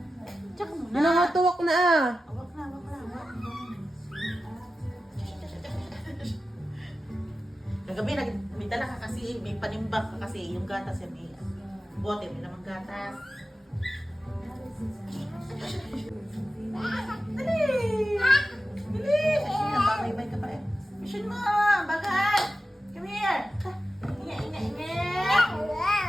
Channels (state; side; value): normal; both; correlation 0.93